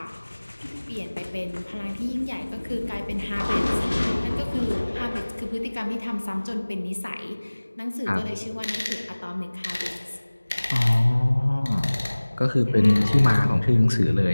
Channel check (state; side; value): inverted; both; correlation -1.00